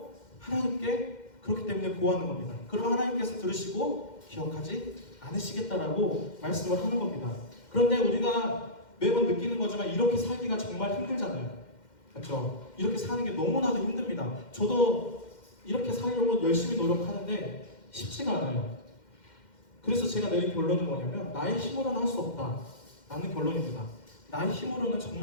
하나님께 그렇기 때문에 구하는 겁니다. 그럼 하나님께서 들으시고 기억하지 않으시겠다라고 말씀을 하는 겁니다. 그런데 우리가 매번 느끼는 거지만 이렇게 살기가 정말 힘들잖아요. 그렇죠? 이렇게 사는 게 너무나도 힘듭니다. 저도 이렇게 살려고 열심히 노력하는데 쉽지가 않아요. 그래서 제가 내린 결론은 뭐냐면 나의 힘으로는 할 수 없다 라는 결론입니다. 나의 힘으로는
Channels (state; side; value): late; right; 2.1 ms